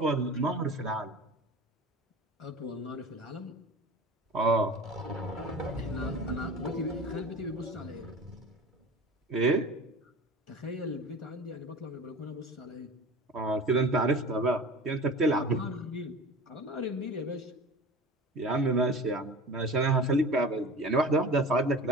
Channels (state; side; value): normal; both; correlation 0.37